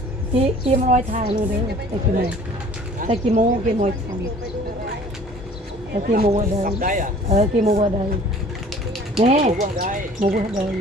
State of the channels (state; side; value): normal; both; correlation 0.50